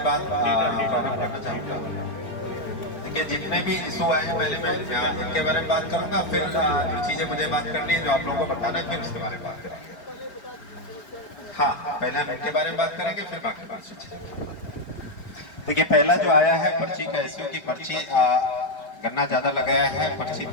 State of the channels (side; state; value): right; late; 4.8 ms